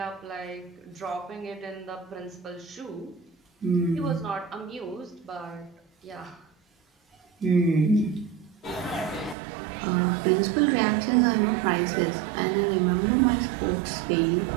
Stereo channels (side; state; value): left; drops out; at 9.3 s